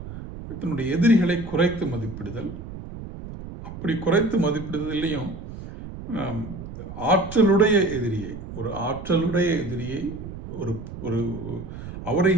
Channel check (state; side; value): noise; right; rumble, 11 dB below the sound